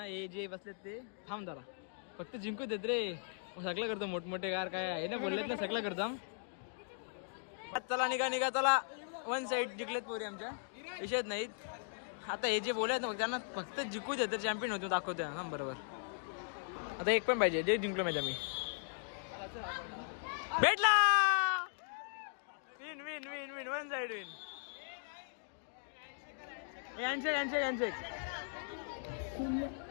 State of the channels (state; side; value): silent; right; digital silence